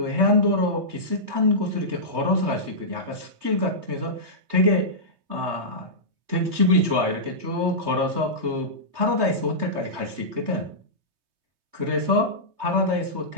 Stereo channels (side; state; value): left; late; 3.2 ms